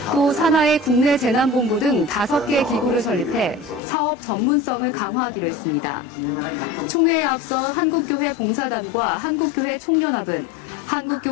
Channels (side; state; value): right; drops out; at 3.8 s